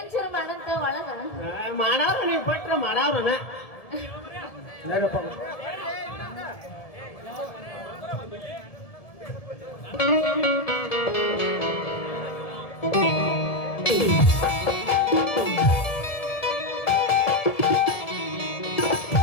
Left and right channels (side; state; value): right; late; 1.7 ms